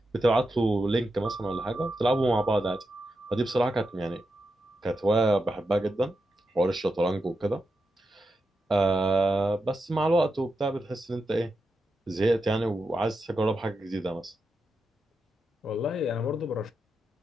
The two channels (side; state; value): both; normal; correlation 0.87